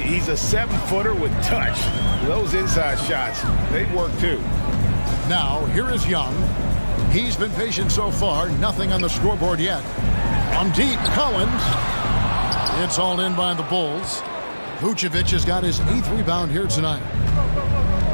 a 7-footer with touch. Those inside shots, they work too. Now, here is Young. He's been patient so far. Nothing on the scoreboard yet. On deep, Collins. It's hauled in by the Bulls. Vucevic has got his 8th rebound here tonight.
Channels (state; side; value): inverted; both; correlation -1.00